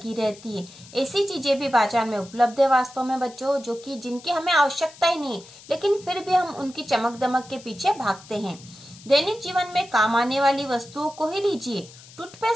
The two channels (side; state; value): left; noise; hiss, 20 dB below the sound